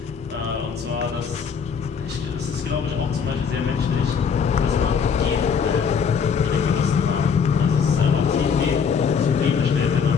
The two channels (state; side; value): quieter; right; 6.4 dB